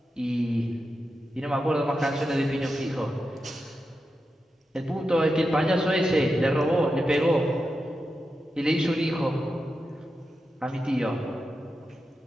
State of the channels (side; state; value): both; normal; correlation 0.89